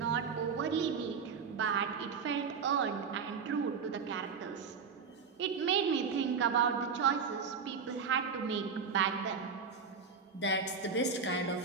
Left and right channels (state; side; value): quieter; left; 5.8 dB